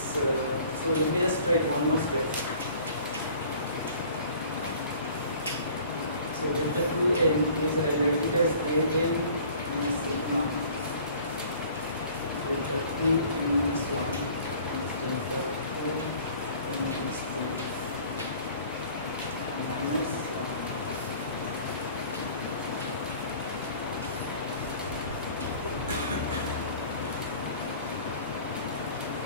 So So let me just write one more step. So delta 2n is, I write it as an minus sigma delta 2n minus 1 is delta 2n minus 2 minus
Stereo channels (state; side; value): inverted; both; correlation -0.49